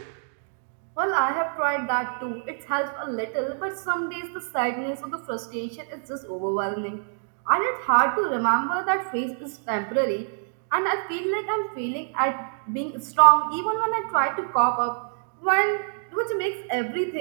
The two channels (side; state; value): left; silent; digital silence